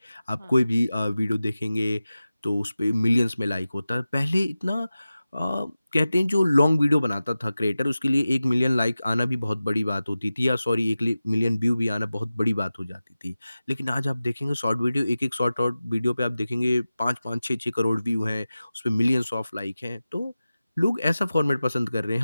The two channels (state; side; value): inverted; both; correlation -0.95